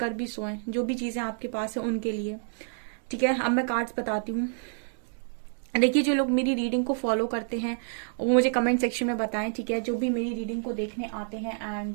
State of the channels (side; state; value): left; silent; digital silence